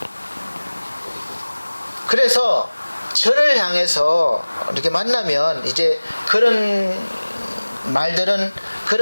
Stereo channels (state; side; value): inverted; both; correlation -1.00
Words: 그래서 저를 향해서 이렇게 만나면 이제 그런 말들은,